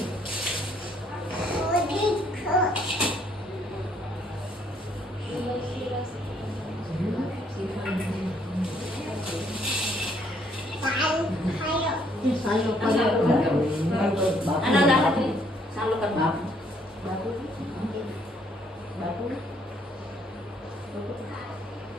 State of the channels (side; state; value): both; normal; correlation 0.67